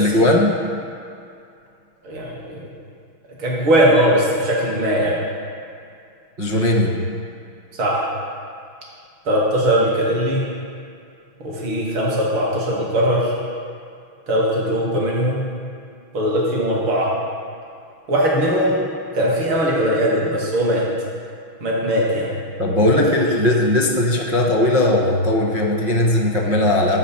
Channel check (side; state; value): left; late; 6.1 ms